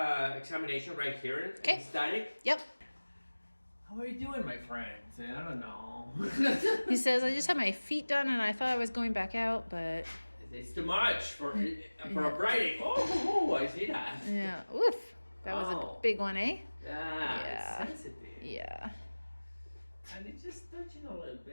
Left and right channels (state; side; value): inverted; both; correlation -1.00